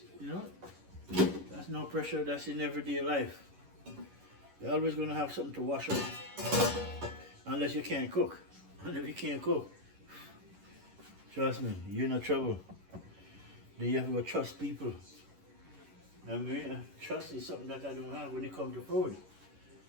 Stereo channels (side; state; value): left; late; 11 ms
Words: you know, that's no pressure, that's in everyday life. You're always gonna have something to wash up. Unless you can't cook. And if you can't cook, trust me, you're in trouble. Then you have to go trust people. I mean, trust is something that I don't have when it comes to food.